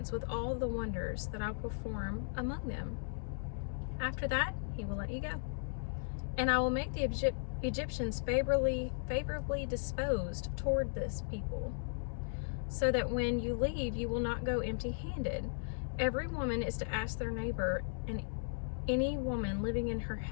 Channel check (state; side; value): silent; right; digital silence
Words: with all the wonders that I will perform among them. After that, he will let you go. And I will make the Egyptians favorably disposed toward this people, so that when you leave, you will not go empty-handed. Every woman is to ask their neighbor and any woman living in her